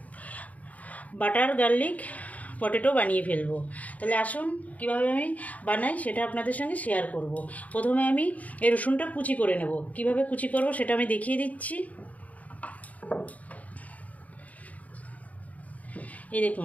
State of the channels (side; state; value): right; late; 0.072 ms